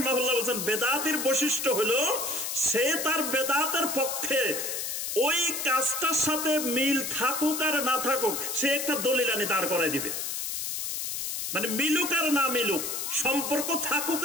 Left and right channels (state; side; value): noise; left; hiss, 3 dB below the sound